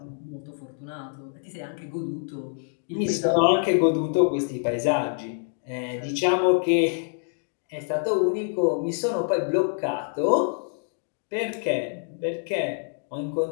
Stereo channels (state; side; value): silent; right; 61 dB below the other